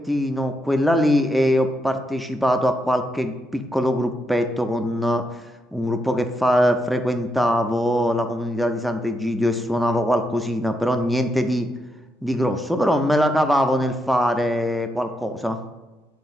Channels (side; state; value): both; normal; correlation 0.81